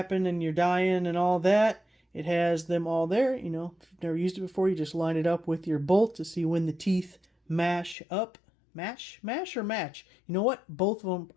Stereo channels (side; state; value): right; drops out; at 8.0 s